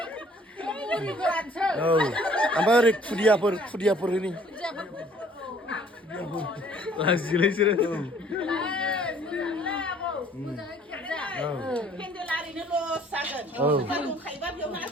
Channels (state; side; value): normal; both; correlation 0.58